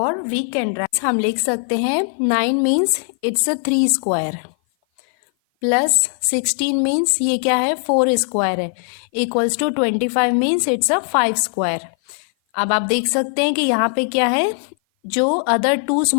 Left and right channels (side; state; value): right; silent; 56 dB below the other